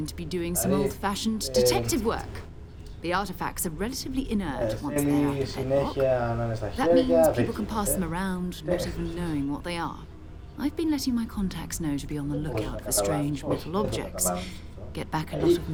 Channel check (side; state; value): both; identical; correlation 1.00